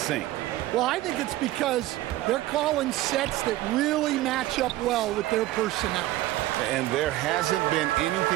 Well, I think it's because they're calling sets that really match up well with their personnel. And there hasn't been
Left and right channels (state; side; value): quieter; left; 16.1 dB